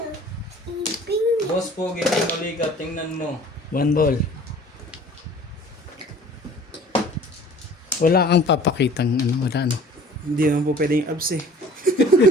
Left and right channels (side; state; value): both; normal; correlation 0.48